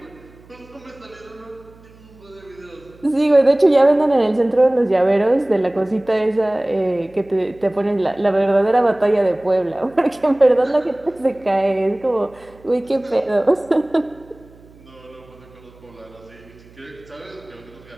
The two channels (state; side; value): noise; right; hum, 25 dB below the sound